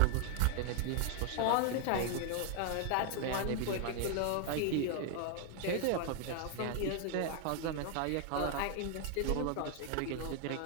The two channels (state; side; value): different; both; correlation 0.00